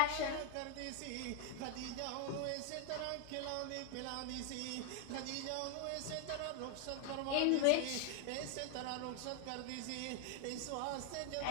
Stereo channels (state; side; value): different; both; correlation 0.00